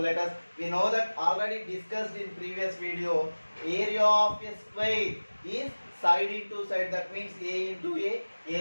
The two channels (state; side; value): inverted; both; correlation -1.00